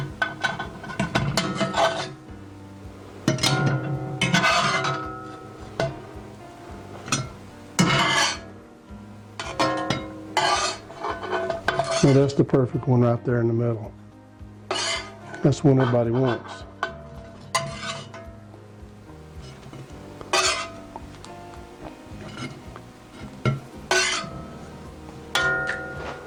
Now that's the perfect one right there in the middle. That's the one everybody wants.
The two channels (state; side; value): identical; both; correlation 1.00